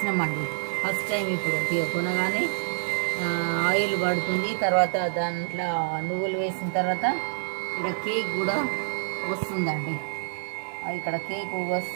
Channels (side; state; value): left; silent; 57 dB below the other